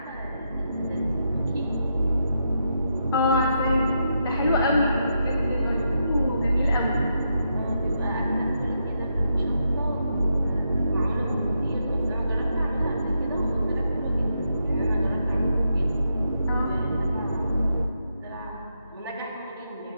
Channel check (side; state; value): both; inverted; correlation -0.81